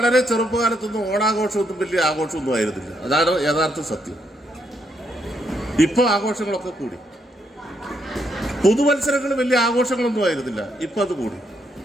ചെറുപ്പകാലത്തൊന്നും ഓണാഘോഷമൊന്നും വലിയ ആഘോഷമൊന്നും ആയിരുന്നില്ല. അതാണ് യഥാർത്ഥ സത്യം. ഇപ്പൊ ആഘോഷങ്ങളൊക്കെ കൂടി. പുതുവത്സരങ്ങൾ വലിയ ആഘോഷങ്ങളൊന്നും ആയിരുന്നില്ല, ഇപ്പൊ അത് കൂടി.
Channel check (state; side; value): normal; both; correlation 0.76